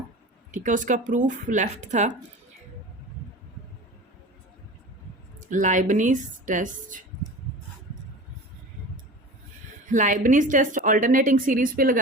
ठीक है, उसका प्रूफ लेफ्ट था। लाइबनीज टेस्ट ऑल्टरनेटिंग सीरीज पे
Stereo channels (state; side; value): normal; both; correlation 0.35